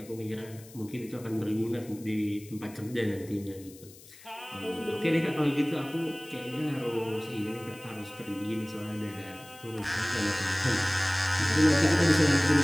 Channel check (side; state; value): left; noise; hiss, 21 dB below the sound